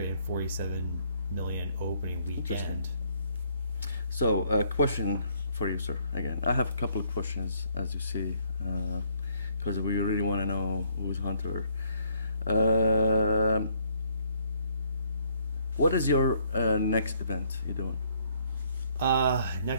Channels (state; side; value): inverted; both; correlation -0.66